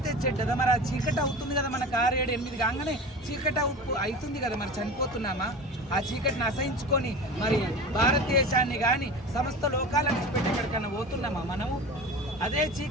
చెడ్డదా. మరి ఆ చీకటి అవుతుంది కదా, మనకు 6-7-8 కాగానే చీకటి అవుతుంది కదా. మరి చనిపోతున్నామా? ఆ చీకటిని అసహించుకొని మరి భారతదేశాన్ని కానీ సమస్త లోకాలను పెట్టి ఎక్కడికన్నా పోతున్నామా మనము? అదే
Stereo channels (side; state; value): both; normal; correlation 0.32